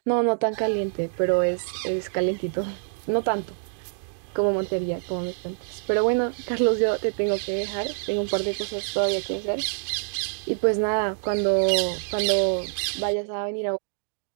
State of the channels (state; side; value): silent; left; digital silence